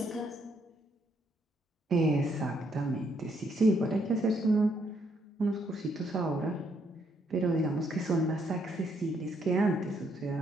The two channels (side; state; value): both; normal; correlation 0.73